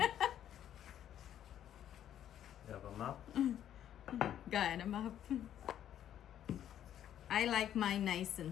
have a map? Got a map. I like mine nice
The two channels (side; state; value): right; quieter; 10.7 dB